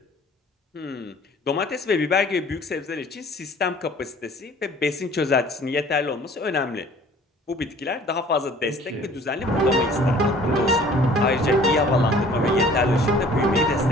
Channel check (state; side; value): normal; both; correlation 0.51